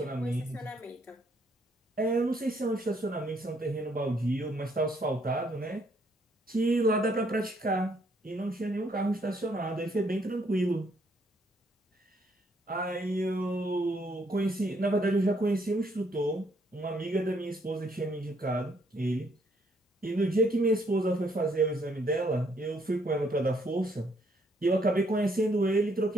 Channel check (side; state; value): both; normal; correlation 0.69